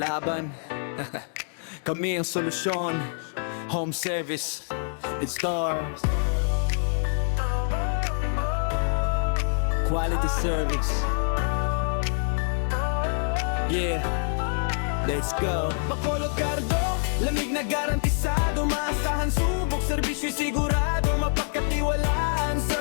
kami ang solusyon. Home service, it stars. Quality service. Yeah, let's go. Bacolod Cardo, lamig na garantisado. Maasahan, subok, servisyo'y sigurado. Mapagkatiwalaan sa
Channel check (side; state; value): right; silent; digital silence